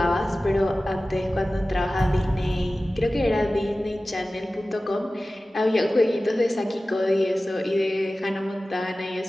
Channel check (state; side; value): normal; both; correlation 0.96